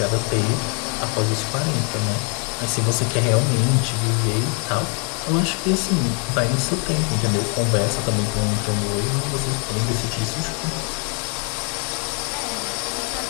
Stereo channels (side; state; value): right; quieter; 38.0 dB